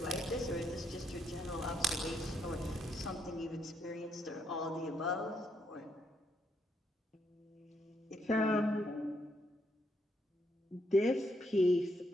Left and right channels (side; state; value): both; normal; correlation 0.76